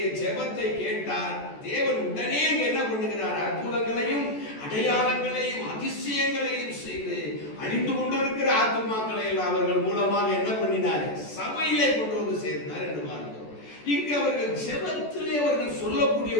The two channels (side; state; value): right; late; 14 ms